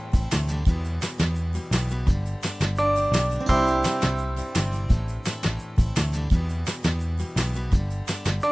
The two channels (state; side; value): normal; both; correlation 0.98